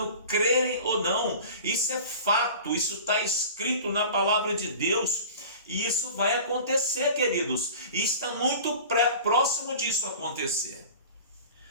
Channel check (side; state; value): both; inverted; correlation -0.39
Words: crerem ou não, isso é fato, isso está escrito na palavra de Deus, e isso vai acontecer, queridos, e está muito próximo disso acontecer.